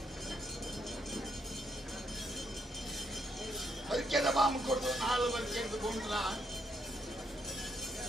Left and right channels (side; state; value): both; normal; correlation 0.75